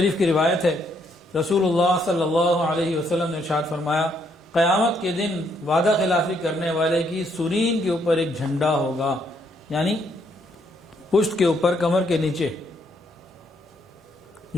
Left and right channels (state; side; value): normal; both; correlation 0.72